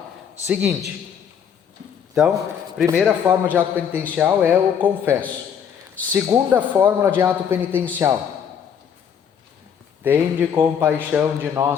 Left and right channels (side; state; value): right; quieter; 7.9 dB